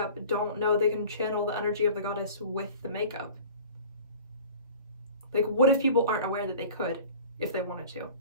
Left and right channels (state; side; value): inverted; both; correlation -0.42